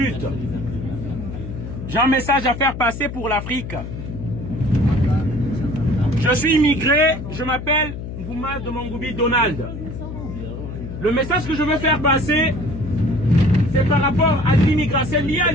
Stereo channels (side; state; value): left; noise; hum, 8 dB below the sound